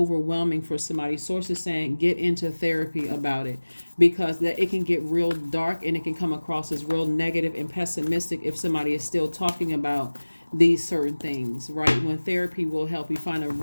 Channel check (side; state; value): both; inverted; correlation -1.00